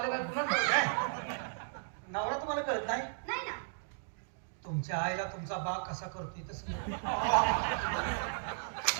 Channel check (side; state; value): left; silent; digital silence